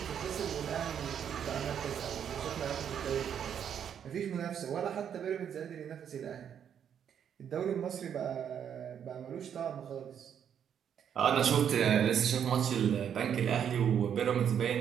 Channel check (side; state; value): left; quieter; 8.6 dB